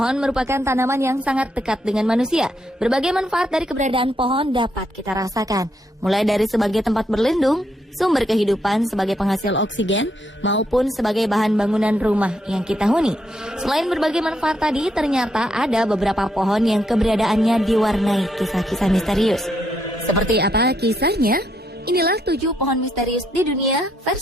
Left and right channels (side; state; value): both; normal; correlation 0.77